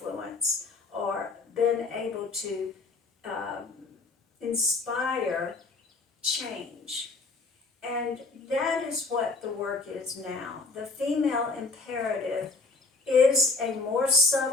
or been able to inspire change. And that is what the work is now. The female imperative is a more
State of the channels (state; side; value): quieter; right; 3.7 dB